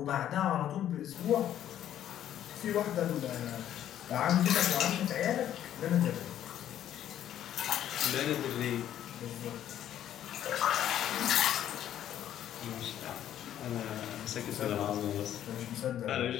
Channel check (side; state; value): right; quieter; 11.1 dB